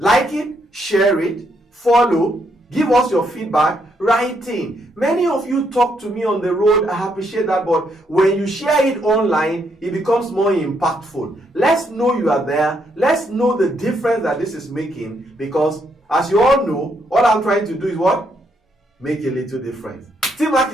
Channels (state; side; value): normal; both; correlation 0.75